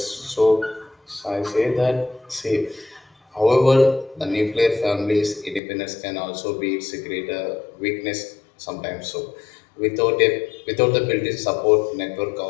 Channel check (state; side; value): drops out; right; at 5.6 s